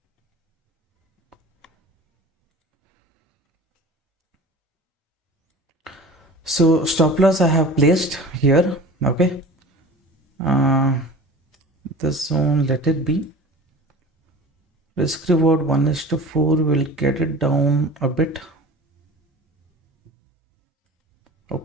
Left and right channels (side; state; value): both; normal; correlation 0.39